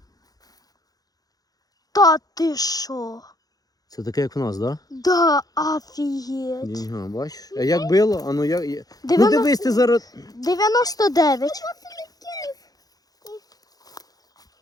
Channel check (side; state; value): right; late; 0.18 ms